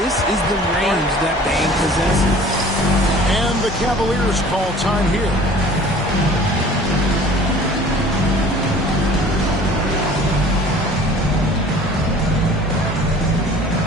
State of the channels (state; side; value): normal; both; correlation 0.47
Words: is the range that Bane possesses. And the Cavaliers call time here.